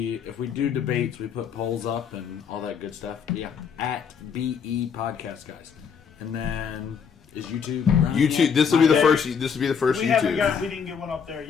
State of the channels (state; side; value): quieter; right; 6.8 dB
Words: if we do debates, we put polls up and all that good stuff. Yeah, at BE Podcast Guys. And then is YouTube? YouTube. This will be the first. This will be the first YouTube. We didn't get one up there